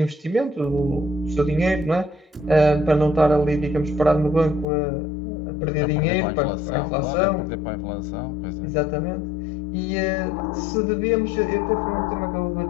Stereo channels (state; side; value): drops out; right; at 4.7 s